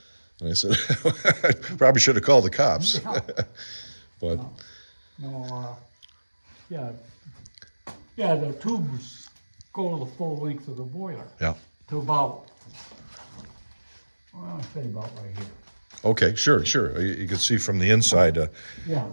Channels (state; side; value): inverted; both; correlation -1.00